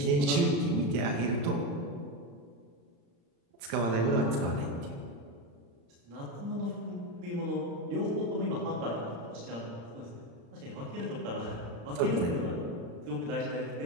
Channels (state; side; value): late; left; 35 ms